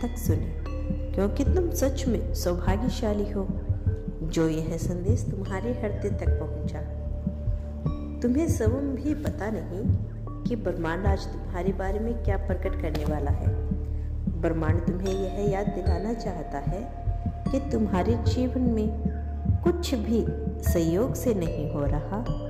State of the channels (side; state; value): both; identical; correlation 1.00